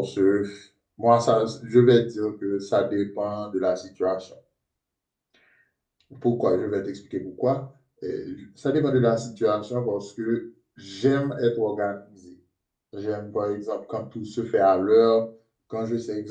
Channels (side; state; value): both; identical; correlation 1.00